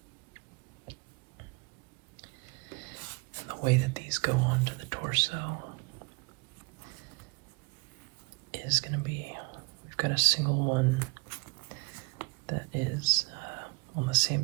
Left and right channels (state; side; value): quieter; left; 29.5 dB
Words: And the way that these go onto the torso is going to be, we've got a single one that is on the